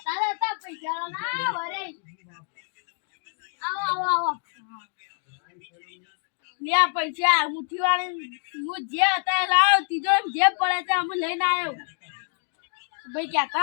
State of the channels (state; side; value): silent; right; 61 dB below the other